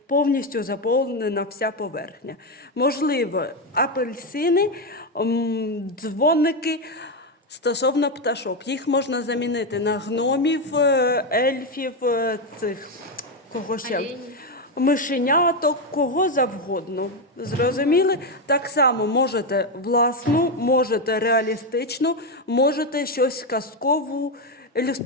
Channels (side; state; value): both; normal; correlation 0.08